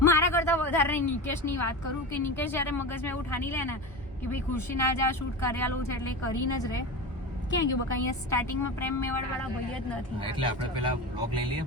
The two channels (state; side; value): normal; both; correlation 0.25